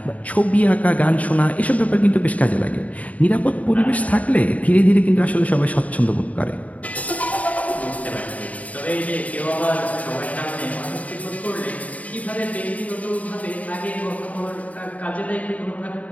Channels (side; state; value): right; late; 0.070 ms